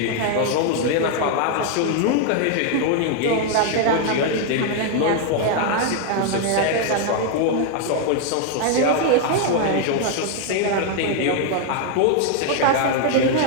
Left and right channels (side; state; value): both; different; correlation 0.00